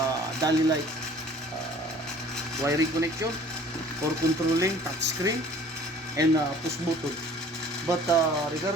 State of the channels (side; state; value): both; normal; correlation 0.51